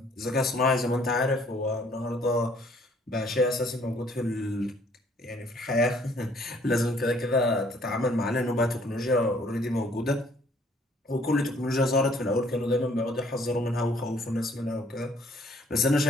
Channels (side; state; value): both; normal; correlation 0.61